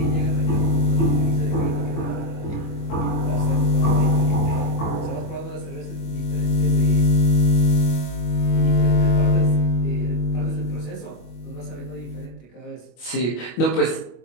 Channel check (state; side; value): late; right; 25 ms